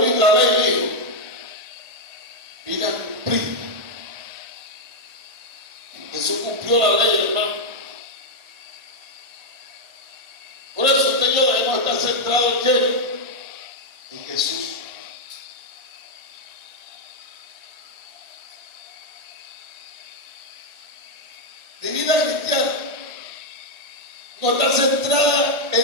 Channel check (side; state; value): left; late; 1.4 ms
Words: la ley, dijo. Vino a cumplir. Jesús cumplió la ley, hermano. Por eso usted y yo debemos estar centrados en quién? En Jesús. Mi vida cristiana no está centrada